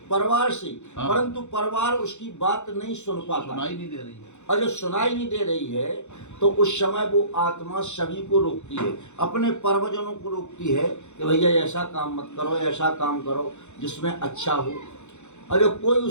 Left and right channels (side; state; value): right; late; 0.83 ms